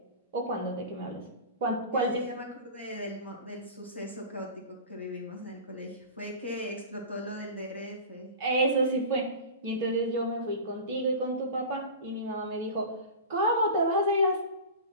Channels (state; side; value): inverted; both; correlation -0.32